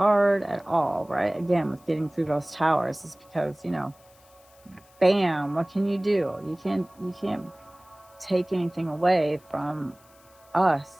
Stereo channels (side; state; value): left; noise; hiss, 29 dB below the sound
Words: at all, right? Again, with getting through those towers, is because, bam, what can you do? You can't take anything away from us.